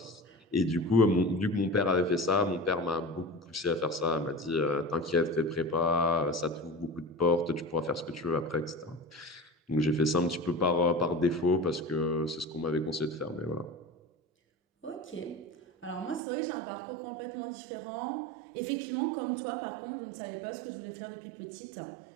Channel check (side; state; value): left; drops out; at 16.2 s